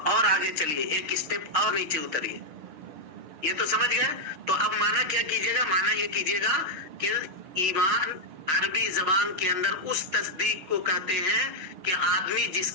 آگے چلیے، ایک اسٹیپ اور نیچے اتریے، یہ تو سمجھ گئے۔ تو اب معنی کیا کیجئے گا؟ معنی یہ کیجئے گا کہ ایمان عربی زبان کے اندر اس تصدیق کو کہتے ہیں کہ آدمی جس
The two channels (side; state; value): left; late; 6.4 ms